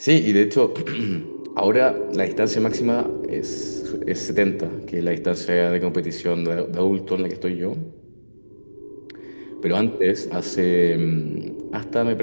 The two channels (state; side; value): inverted; both; correlation -1.00